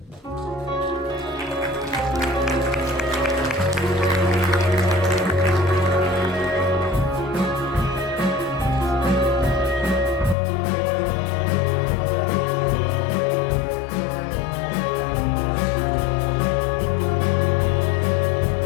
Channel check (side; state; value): right; drops out; at 10.4 s